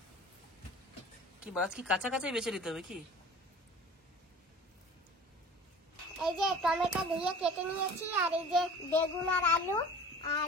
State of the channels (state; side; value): normal; both; correlation 0.42